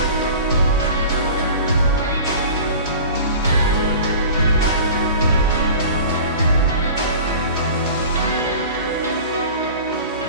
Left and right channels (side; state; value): both; inverted; correlation -0.39